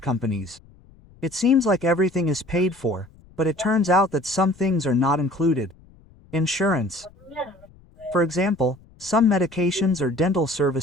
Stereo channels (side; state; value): left; noise; rumble, 26 dB below the sound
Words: It seems like everything is paid for, but it turns out that some things are not included. Insurance. For example, some medications or dental